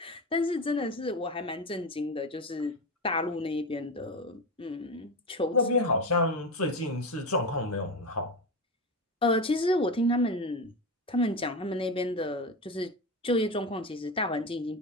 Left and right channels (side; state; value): both; normal; correlation 0.20